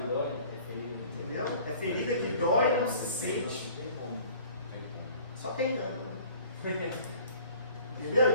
Entendeu? É ferida que dói e não se sente. Só tem dano. Entendeu?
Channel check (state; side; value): inverted; both; correlation -0.49